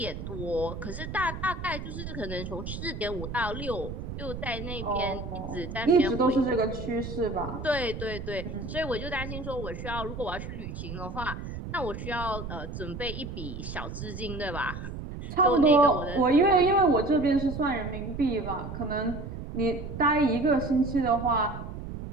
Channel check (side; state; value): right; noise; rumble, 8 dB below the sound